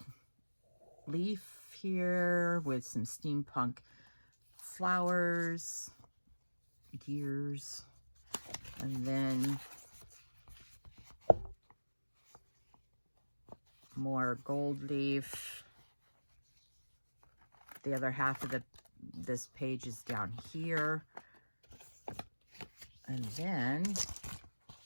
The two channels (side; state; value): both; inverted; correlation -1.00